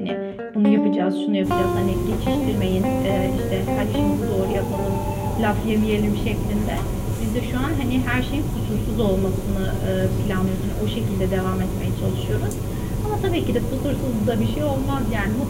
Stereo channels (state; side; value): identical; both; correlation 1.00